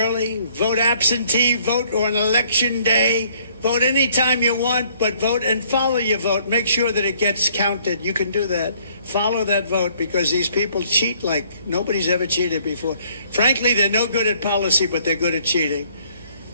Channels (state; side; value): inverted; both; correlation -0.62